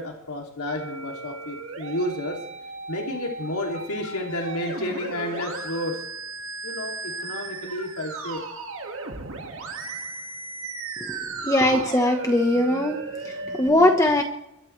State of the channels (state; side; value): normal; both; correlation 0.43